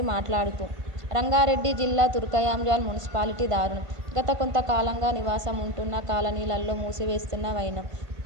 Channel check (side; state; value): left; late; 1.5 ms